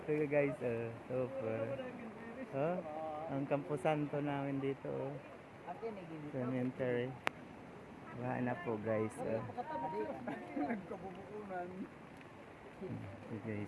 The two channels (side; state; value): both; identical; correlation 1.00